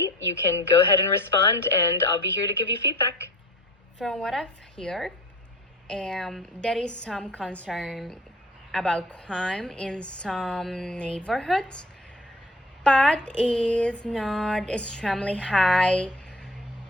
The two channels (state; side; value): normal; both; correlation 0.44